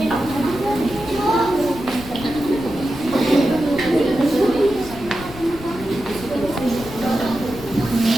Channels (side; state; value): left; noise; rumble, 14 dB below the sound